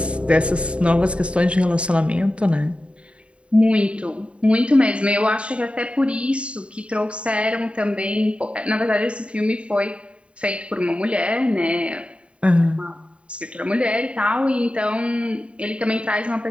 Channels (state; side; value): late; left; 0.060 ms